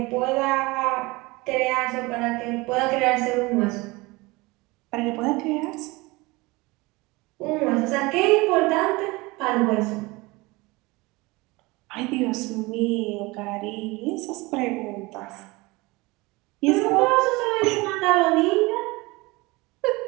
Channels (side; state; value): left; quieter; 23.1 dB